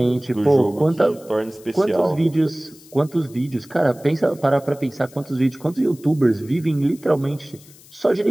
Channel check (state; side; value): noise; left; hiss, 24 dB below the sound